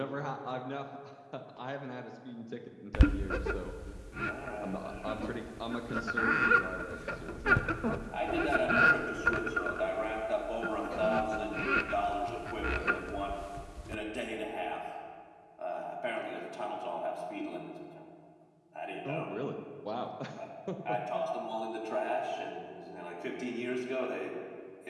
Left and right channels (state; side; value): identical; both; correlation 1.00